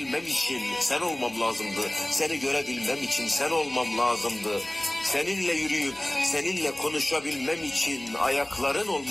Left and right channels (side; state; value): right; noise; hum, 29 dB below the sound